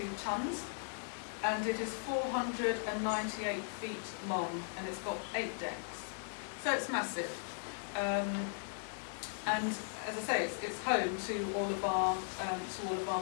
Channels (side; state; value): right; silent; digital silence